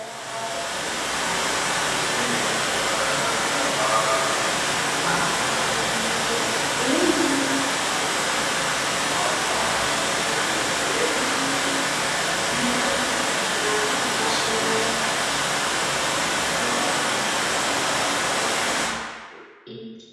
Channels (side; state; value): both; identical; correlation 1.00